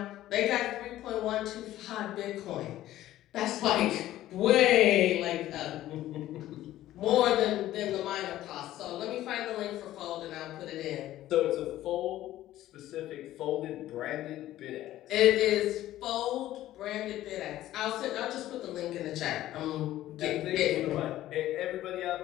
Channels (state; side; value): quieter; right; 14.1 dB